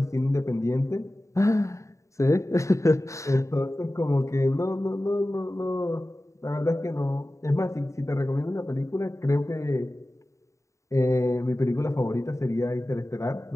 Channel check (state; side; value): late; right; 0.15 ms